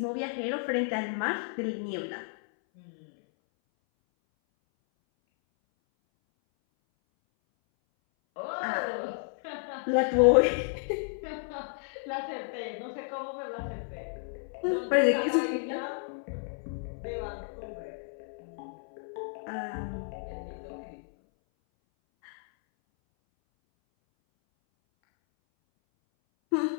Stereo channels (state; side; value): silent; right; 57 dB below the other